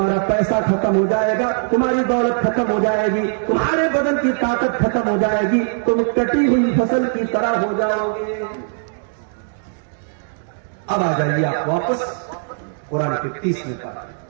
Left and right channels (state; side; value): silent; left; 66 dB below the other